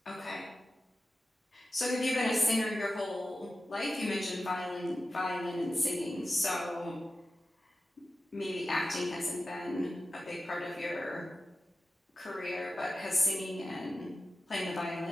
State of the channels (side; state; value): both; normal; correlation 0.93